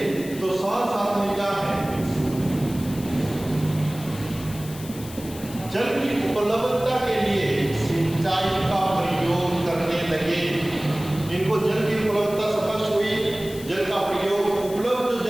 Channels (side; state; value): left; noise; hiss, 16 dB below the sound